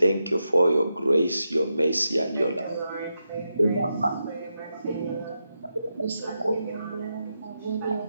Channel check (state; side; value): inverted; both; correlation -0.87